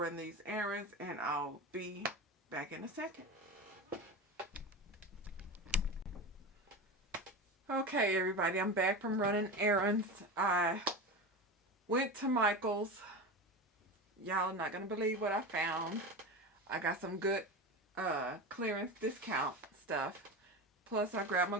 these errands, and I'll be back in a second. Okay, everybody, I'm back from running errands. I went to Michael's. Y'all not going to believe what I found. I got some good clearance discount stuff. Plus, I grabbed my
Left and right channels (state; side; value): normal; both; correlation 0.24